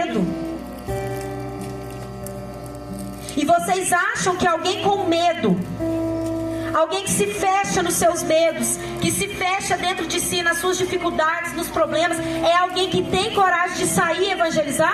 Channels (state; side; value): identical; both; correlation 1.00